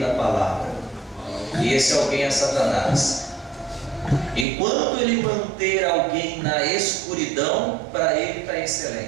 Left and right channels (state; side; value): drops out; left; at 4.5 s